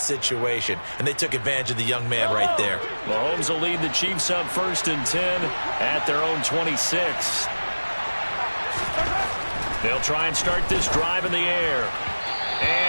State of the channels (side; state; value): both; inverted; correlation -1.00